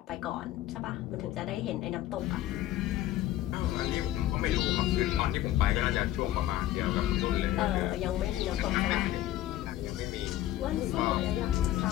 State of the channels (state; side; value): quieter; right; 13.9 dB